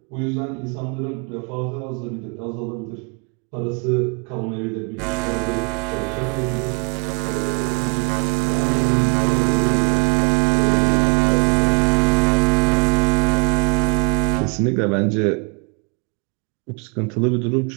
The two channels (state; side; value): quieter; left; 35.1 dB